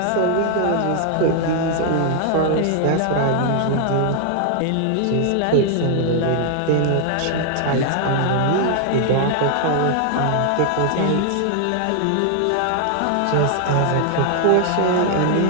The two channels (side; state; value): both; different; correlation 0.00